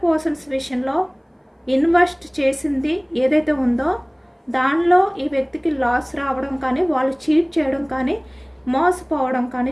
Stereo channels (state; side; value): identical; both; correlation 1.00